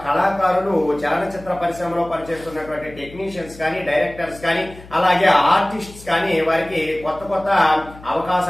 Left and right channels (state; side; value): noise; left; hum, 19 dB below the sound